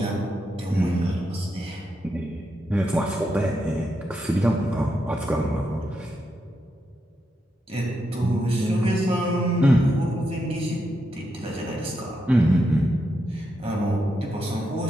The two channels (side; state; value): both; normal; correlation 0.84